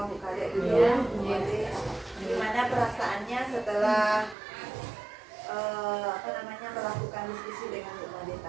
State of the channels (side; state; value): left; drops out; at 4.4 s